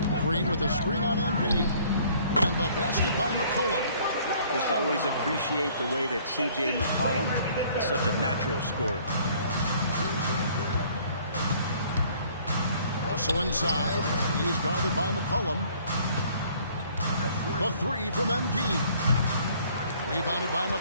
Green with a screen on MP. And the basket by McCollum. Just always appreciate the way that C.J. McCollum is such a natural scorer. Russell inside. He's guarded by McCollum. The 3 from MP. Rebounded by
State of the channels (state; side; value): inverted; both; correlation -0.58